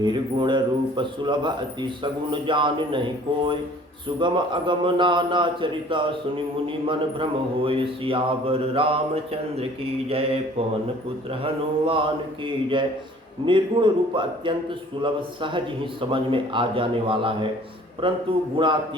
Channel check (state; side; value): normal; both; correlation 0.52